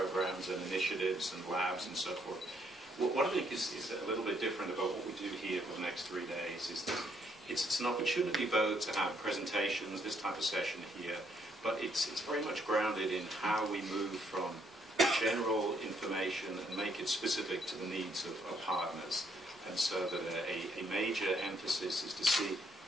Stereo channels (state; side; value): normal; both; correlation 0.71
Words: and initiatives and labs and so forth. What I think is a little bit different about what we do here for the next 3 days is that it's an opportunity both to have presentations, this type of session here, but it's very much grounded in how we move from general information and make it specific to the needs of partners. And so that a major emphasis is to see